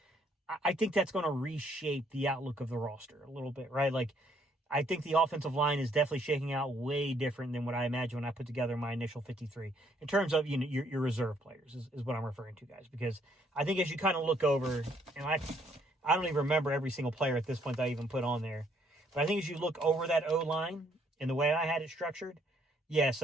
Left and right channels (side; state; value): both; normal; correlation 0.67